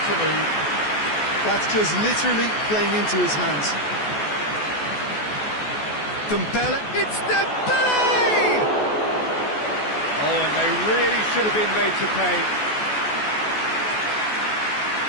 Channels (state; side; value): late; right; 14 ms